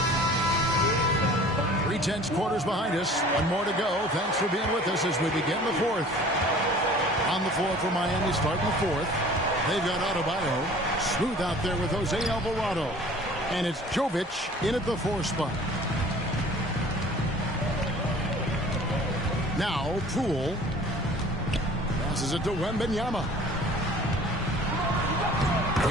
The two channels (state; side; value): normal; both; correlation 0.48